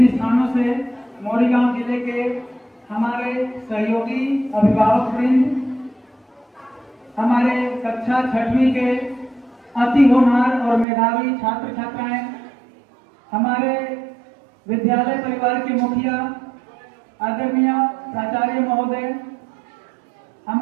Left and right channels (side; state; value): left; drops out; at 10.9 s